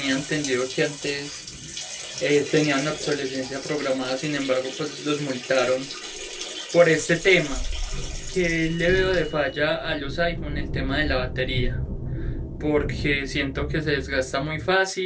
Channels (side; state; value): both; identical; correlation 1.00